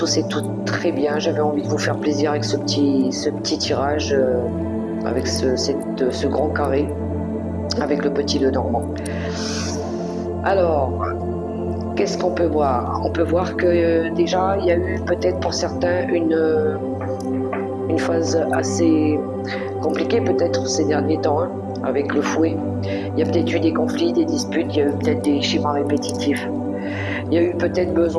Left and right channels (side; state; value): both; identical; correlation 1.00